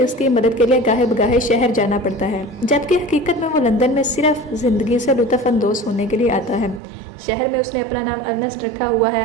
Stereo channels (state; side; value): drops out; left; at 6.8 s